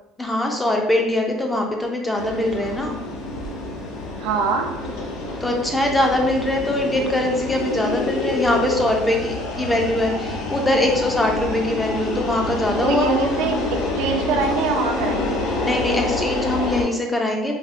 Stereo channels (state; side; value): normal; both; correlation 0.59